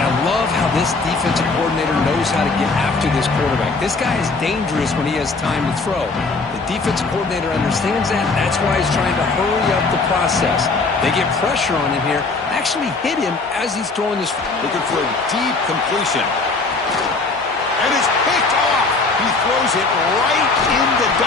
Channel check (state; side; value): quieter; right; 3.8 dB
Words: I love how this defensive coordinator knows how to get after this quarterback. This guy is dangerous when he has time to throw. The defensive coordinator understands that. That's why he's trying to hurry up the process. They get pressure on him here. Actually hit him as he's throwing this. Looking for a deep completion. And it's picked off. He throws it right into